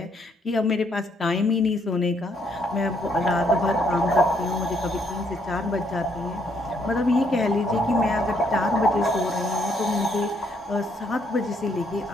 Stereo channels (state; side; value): normal; both; correlation 0.71